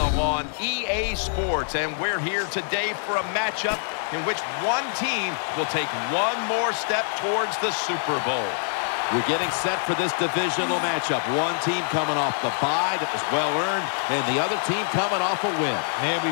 on EA Sports, and we're here today for a matchup in which one team will take one more step towards the Super Bowl. We're getting set for this divisional matchup. One team coming off the bye that was well-earned, and the other team coming off a win. Man, we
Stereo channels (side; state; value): right; silent; digital silence